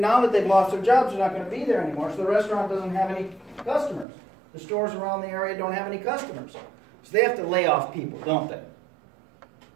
that they've lost their jobs, they're not going to be there anymore, so the restaurant doesn't have any customers. The stores around the area don't have any customers. So they have to lay off people, don't they?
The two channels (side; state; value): left; drops out; at 4.0 s